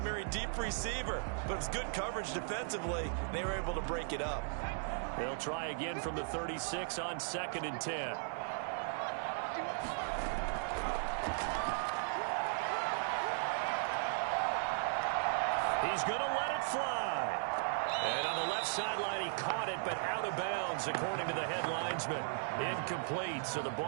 deep receiver. But it was good coverage defensively, and they were able to break it up. They'll try again from the 36 on 2nd and 10. He's going to let it fly. And on the left sideline, he caught it, but out of bounds, according to the head linesman. Incomplete, so the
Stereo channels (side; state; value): left; silent; digital silence